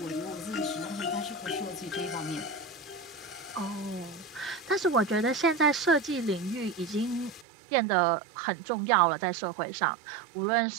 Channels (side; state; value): left; drops out; at 7.5 s